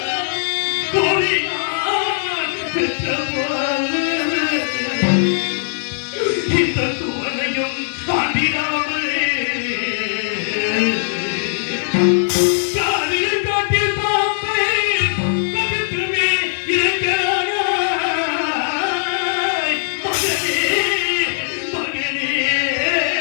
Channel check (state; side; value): silent; right; 66 dB below the other